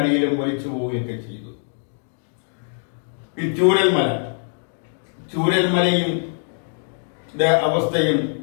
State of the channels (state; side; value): silent; right; digital silence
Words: ഒലിച്ചു പോവുകയൊക്കെ ചെയ്തു. ഈ ചൂരൽമലയും അവസ്ഥയും